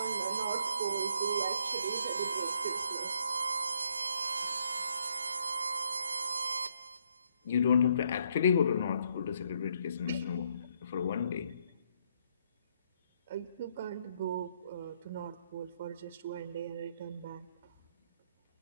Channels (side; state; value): both; inverted; correlation -0.71